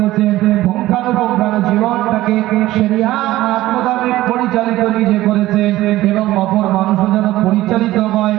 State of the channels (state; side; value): quieter; left; 16.1 dB